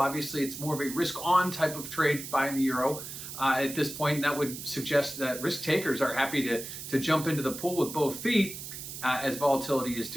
it's more of a risk-on type of trade buying the euro at this point, and that would suggest that risk takers are happy to jump into the pool with both feet as volatility is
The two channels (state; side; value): noise; right; hiss, 9 dB below the sound